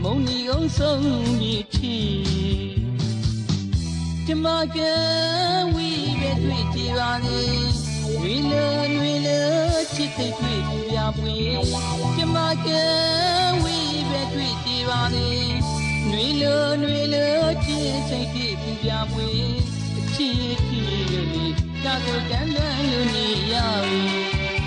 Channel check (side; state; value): both; identical; correlation 1.00